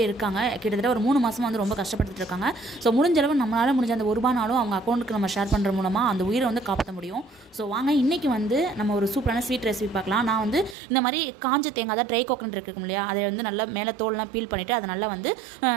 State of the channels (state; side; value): drops out; left; at 10.8 s